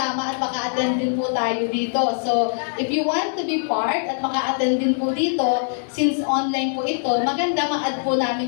at maka-attend din po tayo dito. So, if you want to be part at maka-attend din po dito, since online po ito, maganda ma-add po namin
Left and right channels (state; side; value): silent; right; digital silence